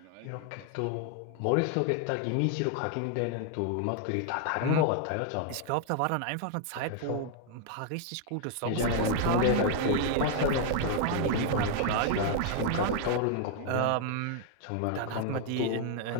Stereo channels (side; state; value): both; different; correlation 0.00